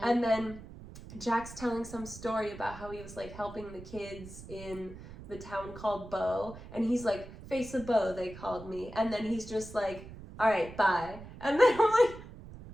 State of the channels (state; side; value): noise; right; rumble, 15 dB below the sound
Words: and then Jack's telling some story about how he was like helping the kids in the town called Bo, and he's like, Face of Bo, they called me, and then he's just like, all right, bye. And then I'm like,